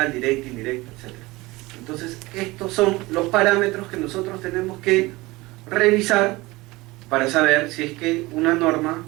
directa, indirecta, etcétera. Entonces, estos son los parámetros que nosotros tenemos que revisar para saber si es que una norma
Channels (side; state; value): left; quieter; 21.3 dB